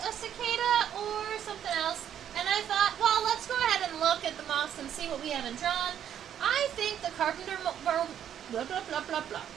a cicada, or something else, and I thought, well, let's go ahead and look at the moths and see what we haven't drawn. I think the carpenterworm,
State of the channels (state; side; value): quieter; left; 9.7 dB